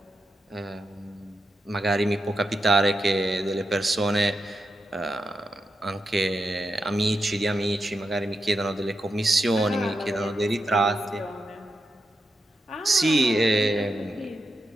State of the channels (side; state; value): both; normal; correlation 0.87